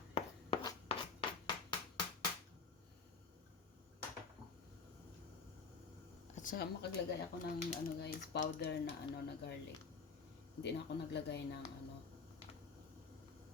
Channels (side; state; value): right; quieter; 5.0 dB